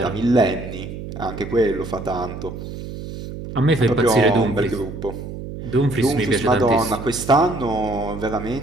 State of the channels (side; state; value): right; noise; hum, 9 dB below the sound